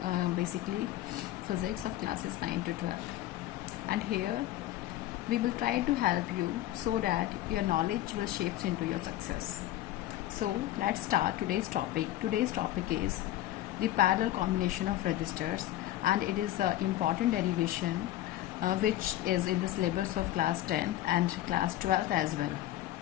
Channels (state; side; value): quieter; right; 14.3 dB